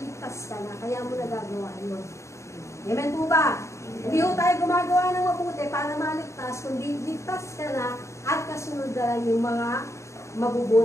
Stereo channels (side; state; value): right; late; 0.14 ms